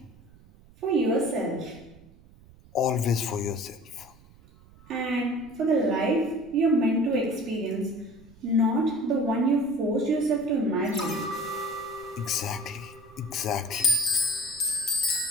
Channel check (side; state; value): right; noise; rumble, 24 dB below the sound